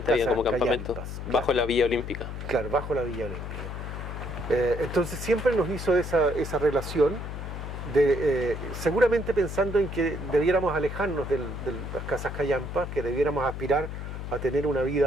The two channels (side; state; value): left; noise; hum, 7 dB below the sound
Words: había como campamentos, callampas, bajo claro. La Villa Olímpica. Claro, bajo la Villa Olímpica. Entonces siempre nos hizo esa relación, seguramente pensando en que debiéramos alejarnos de las casas callampas, que debiéramos aspirar a tener una